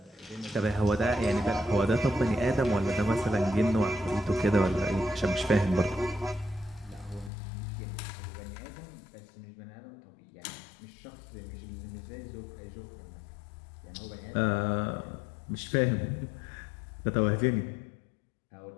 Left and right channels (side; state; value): right; drops out; at 7.3 s